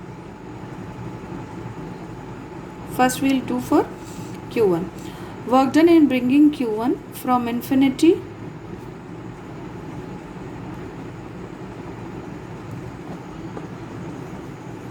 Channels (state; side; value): identical; both; correlation 1.00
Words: first we'll do for Q1. Work done in bringing Q1 from infinity